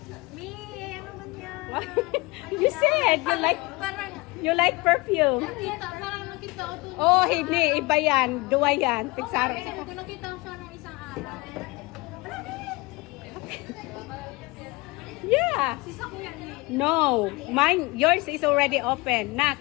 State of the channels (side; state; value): right; quieter; 24.1 dB